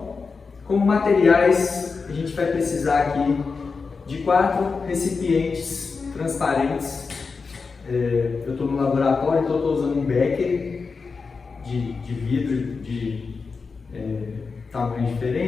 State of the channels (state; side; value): quieter; right; 4.8 dB